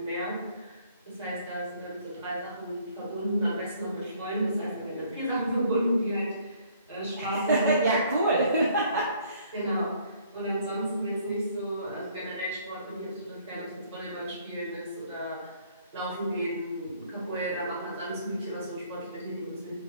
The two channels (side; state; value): both; inverted; correlation -0.61